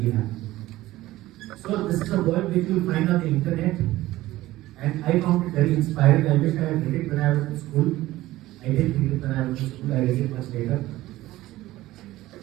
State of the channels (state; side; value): quieter; left; 16.6 dB